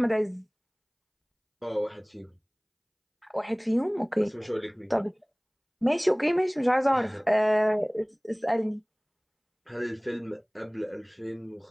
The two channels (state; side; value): identical; both; correlation 1.00